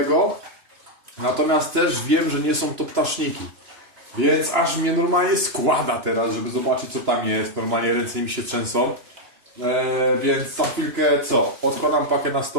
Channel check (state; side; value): late; left; 2.9 ms